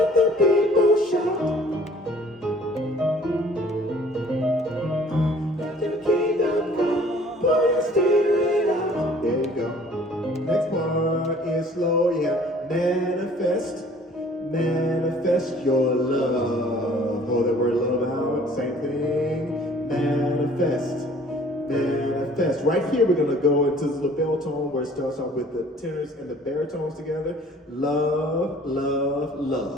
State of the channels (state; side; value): normal; both; correlation 0.53